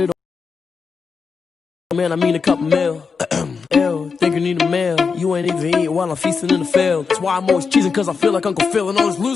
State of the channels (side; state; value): right; quieter; 5.3 dB